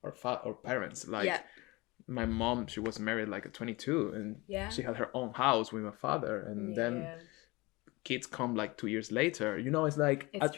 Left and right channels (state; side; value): quieter; right; 23.7 dB